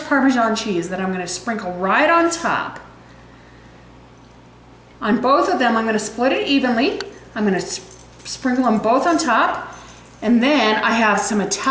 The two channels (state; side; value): identical; both; correlation 1.00